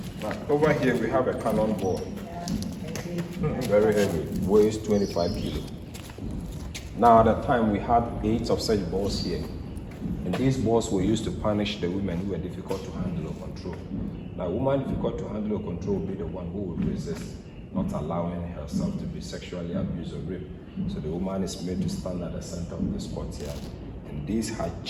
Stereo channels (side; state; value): both; identical; correlation 1.00